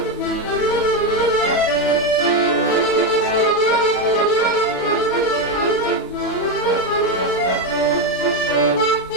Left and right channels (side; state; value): both; normal; correlation 0.09